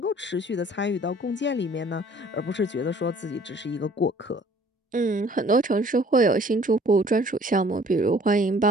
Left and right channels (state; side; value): normal; both; correlation 0.54